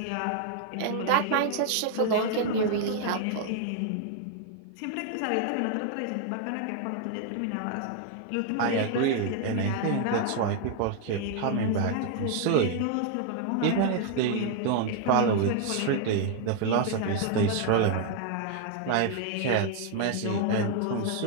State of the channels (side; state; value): both; different; correlation 0.00